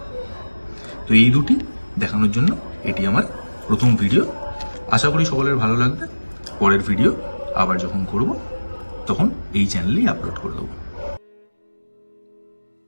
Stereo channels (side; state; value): both; inverted; correlation -1.00